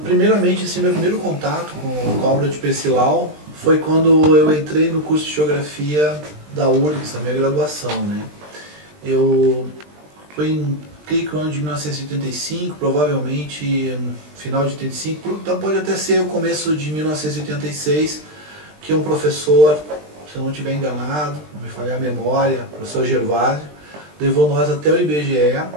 Primeiramente, assim, meu primeiro contato com a obra de Percival foi quando eu entrei no curso de Geografia da URGS, na minha graduação, né? Foi em, creio que o ano de 1985, provavelmente final de 85, então pode até ser o começo de 1986, que um professor, se eu não estiver enganado, não me falhar a memória, o professor Gervásio, levou nós até o IBGE,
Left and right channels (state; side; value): late; left; 20 ms